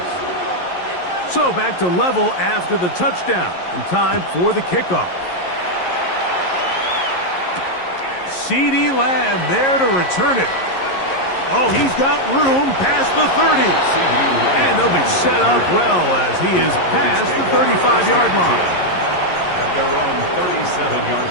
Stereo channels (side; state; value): right; late; 11 ms